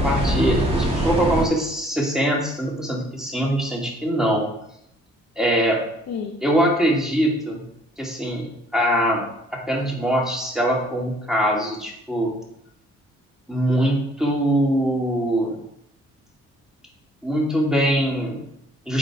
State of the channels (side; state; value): both; normal; correlation 0.61